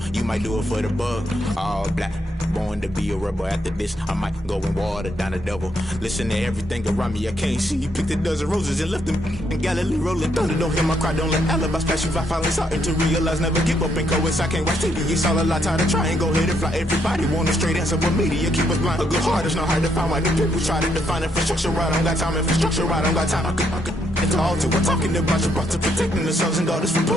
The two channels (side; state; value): both; normal; correlation 0.75